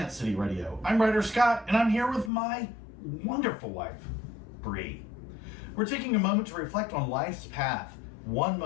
City Radio. I'm Ryder Scott, and I'm here with my wonderful wife, Bre. We're taking a moment to reflect on life's path, one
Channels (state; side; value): drops out; right; at 2.3 s